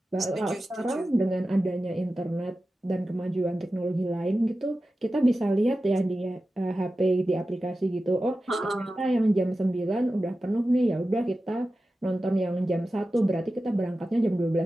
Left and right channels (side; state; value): both; normal; correlation 0.94